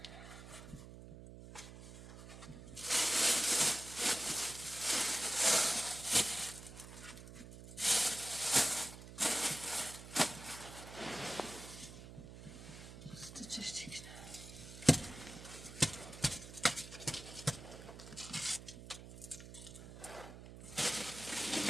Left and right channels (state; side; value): noise; right; hum, 14 dB below the sound